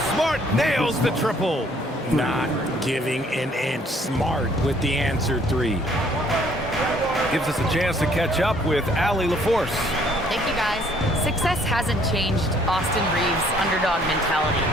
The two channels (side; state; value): both; normal; correlation 0.62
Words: Smart nails the triple. Not giving an inch. Smart with the answer 3. Gives us a chance to catch up with Allie LaForce. Thank you, guys. Success hasn't changed Austin Reeves' underdog mentality.